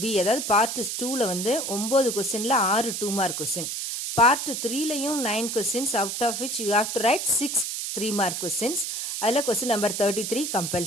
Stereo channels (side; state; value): right; noise; hiss, 3 dB below the sound